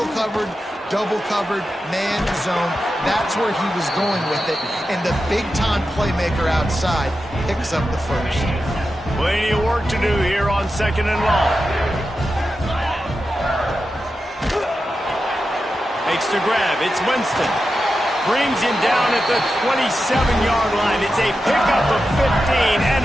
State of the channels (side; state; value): both; normal; correlation 0.90